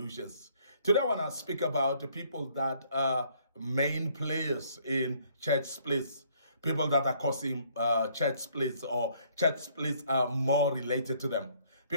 Today I want to speak about the people that are main players in church splits, people that are causing church splits, or church splits are more related to them.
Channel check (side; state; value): both; inverted; correlation -0.64